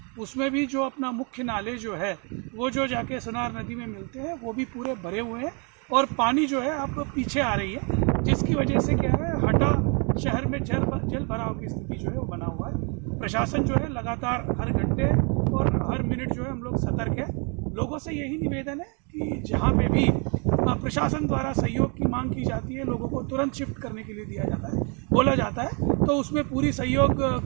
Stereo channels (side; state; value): left; quieter; 34.9 dB